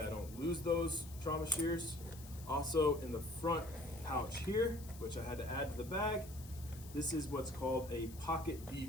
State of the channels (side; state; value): left; noise; hiss, 17 dB below the sound